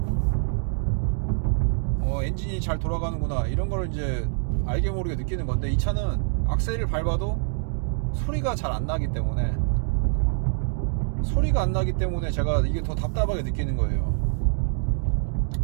엔진이 잘 돌아가는구나, 이런 걸 이제 알게 모르게 느끼는 건데, 이 차는 악셀을 밟아도 소리가 잘 안 나기 때문에 제가 이게 더 답답하게 느끼는 거예요.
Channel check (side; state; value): left; silent; digital silence